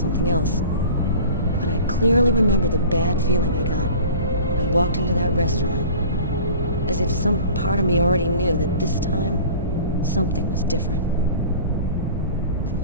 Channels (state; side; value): inverted; both; correlation -0.42